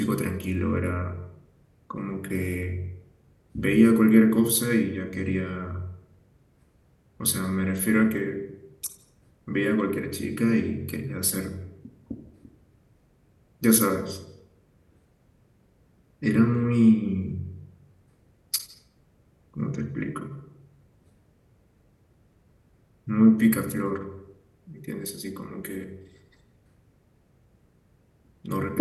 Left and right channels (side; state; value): both; identical; correlation 1.00